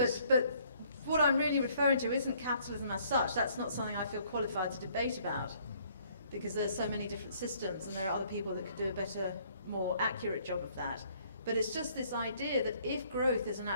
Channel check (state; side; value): inverted; both; correlation -0.63